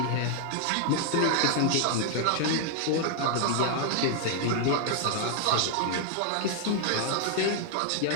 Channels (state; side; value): different; both; correlation -0.01